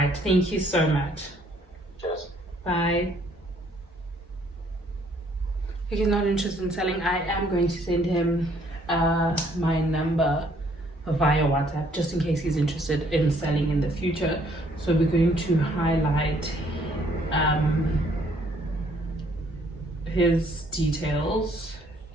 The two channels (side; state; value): both; normal; correlation 0.64